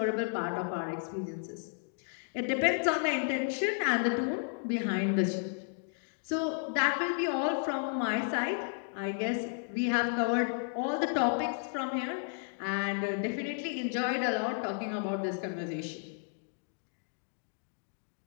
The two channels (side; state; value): right; silent; 56 dB below the other